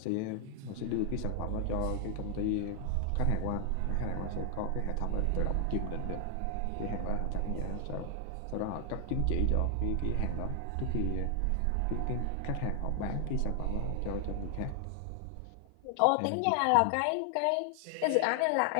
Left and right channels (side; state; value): both; different; correlation 0.00